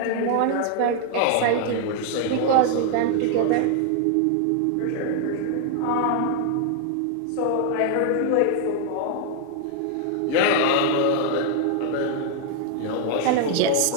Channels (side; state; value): both; different; correlation 0.00